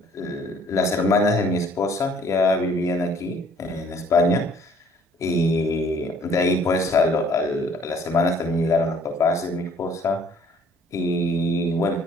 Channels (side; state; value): both; normal; correlation 0.58